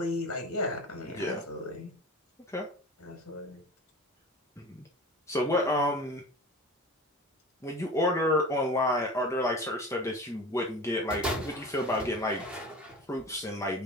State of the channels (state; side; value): normal; both; correlation 0.35